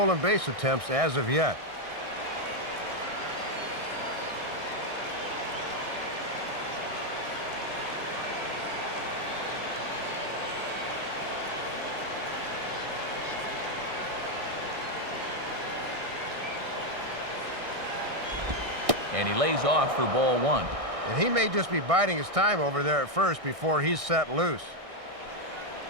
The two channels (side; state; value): left; late; 1.6 ms